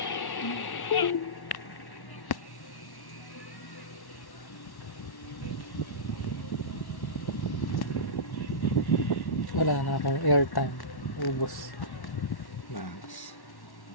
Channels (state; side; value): late; right; 1.1 ms